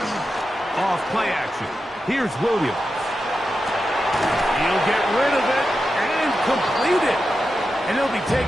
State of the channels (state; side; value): normal; both; correlation 0.90